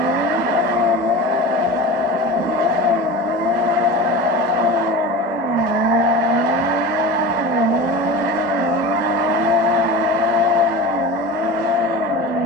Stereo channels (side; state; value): both; normal; correlation 0.31